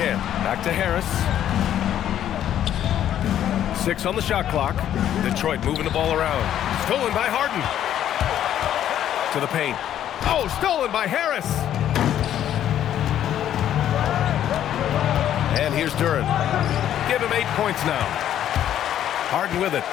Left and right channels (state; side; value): quieter; right; 10.9 dB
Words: Back to Harris. 6 on the shot clock. Detroit moving the ball around. Stolen by Harden. To the paint. Oh, stolen by Harris. And here's Duren. Give him 8 points now. Harden with it.